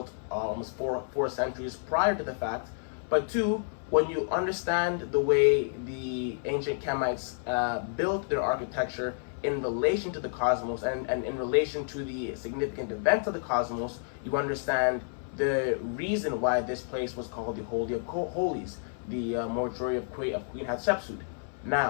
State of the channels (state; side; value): silent; right; 58 dB below the other